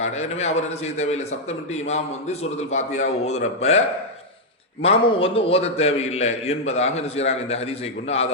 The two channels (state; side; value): normal; both; correlation -0.02